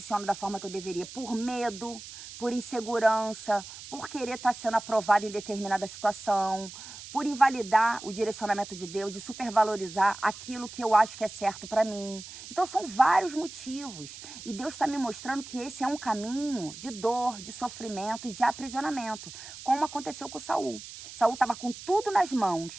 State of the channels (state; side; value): noise; right; hiss, 13 dB below the sound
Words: da forma que eu deveria, por medo, por insegurança, por querer estar sendo aprovado em determinada situação, por invalidar o direcionamento de Deus e supervalorizar aquilo que eu acho que é certo para mim. Então são vários motivos. E Deus está me mostrando que esse é um caminho de dor, de sofrimento e de aprisionamento, como aconteceu com Saul. Saul estava com tudo nas